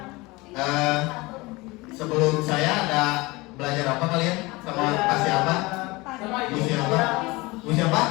Sebelum saya ada belajar apa kalian? Sama Pak siapa? Bu siapa? Bu siapa?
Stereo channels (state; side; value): quieter; right; 22.9 dB